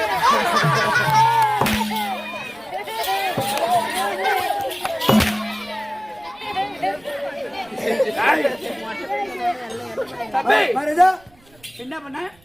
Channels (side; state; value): right; noise; rumble, 29 dB below the sound